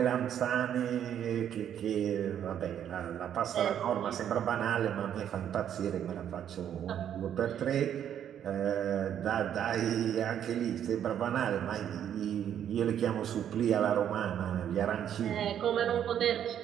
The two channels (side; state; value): left; quieter; 9.7 dB